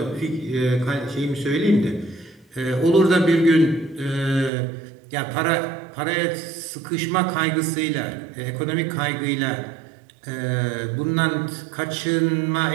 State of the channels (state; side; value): drops out; left; at 4.5 s